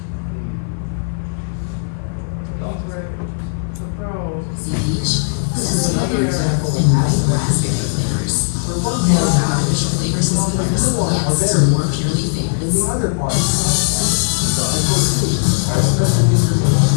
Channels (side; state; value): right; silent; 56 dB below the other